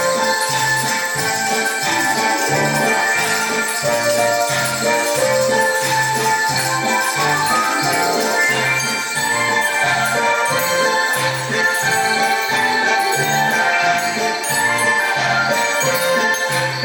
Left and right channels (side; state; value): both; identical; correlation 1.00